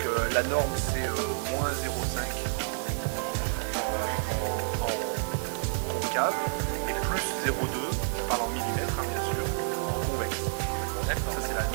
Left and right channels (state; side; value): silent; left; digital silence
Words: la norme c'est moins 0,5 en concave et plus 0,2, je parle en millimètres bien sûr, en convexe. D'accord. Ça c'est la